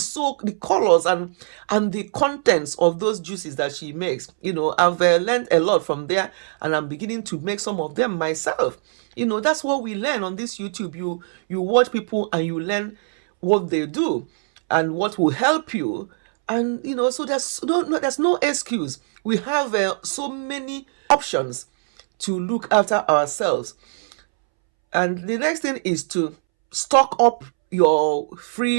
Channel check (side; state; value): left; silent; 64 dB below the other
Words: so the colors and the contents of those juices that she makes. I've learned a lot from there, and I'm beginning to make some of them myself. That's what we learn on this YouTube. You watch people and you learn what they do and what will help you. And so there's no excuse. We have so many options to look after ourselves. And the next thing is to stock up your